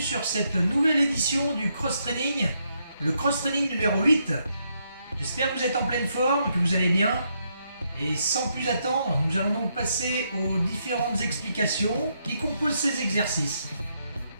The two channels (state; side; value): inverted; both; correlation -0.78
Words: cette nouvelle édition du cross-training, le cross-training numéro 8. J'espère que vous êtes en pleine forme, que vous allez bien. Et sans plus attendre, nous allons donc passer aux différentes explications qui composent ces exercices.